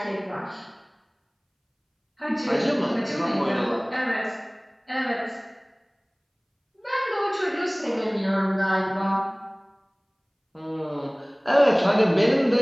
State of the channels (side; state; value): both; identical; correlation 1.00